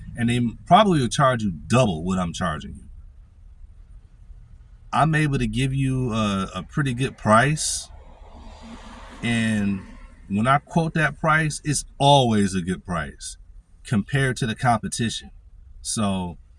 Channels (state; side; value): identical; both; correlation 1.00